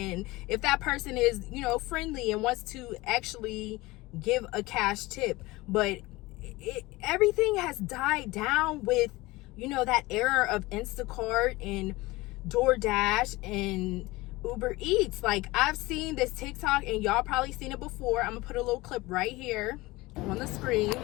if that person is, friendly and wants to actually give a cash tip. But everything has died down with, that era of Instacart and DoorDash and Uber Eats. Like, I've seen this TikTok, and y'all probably seen it before. I'm gonna put a little clip right here on the screen.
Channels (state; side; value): quieter; right; 20.8 dB